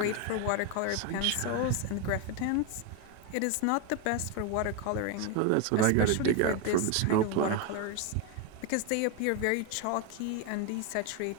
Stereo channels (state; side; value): different; both; correlation 0.02